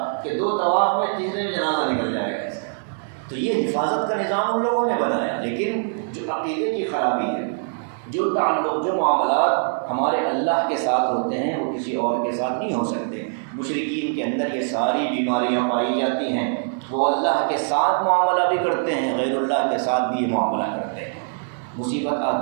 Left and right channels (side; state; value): left; silent; digital silence